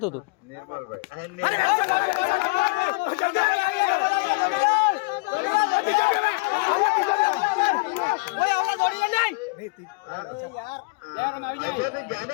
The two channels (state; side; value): quieter; right; 27.4 dB